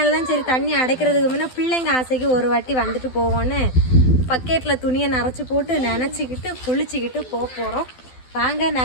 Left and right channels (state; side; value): late; right; 12 ms